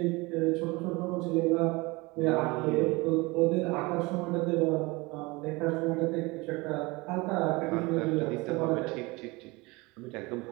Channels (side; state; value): left; quieter; 24.2 dB